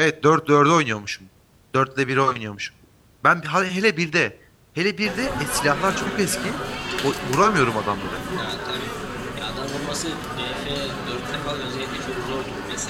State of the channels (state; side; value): identical; both; correlation 1.00